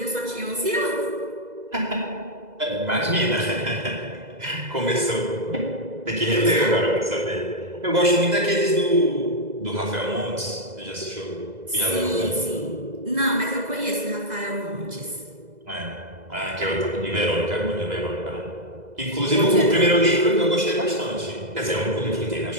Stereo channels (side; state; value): left; late; 2.0 ms